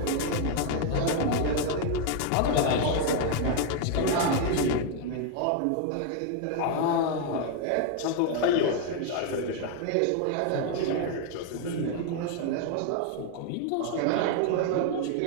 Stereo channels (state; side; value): different; both; correlation 0.01